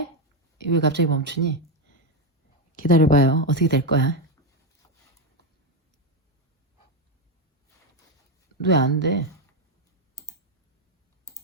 왜 갑자기 멈추니? 기다려봐요. 어떻게 될 거야? 왜 안 돼?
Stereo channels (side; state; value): both; normal; correlation 0.07